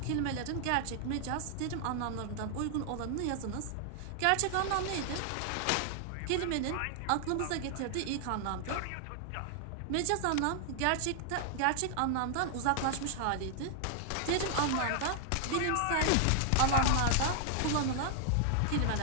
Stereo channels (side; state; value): both; different; correlation 0.00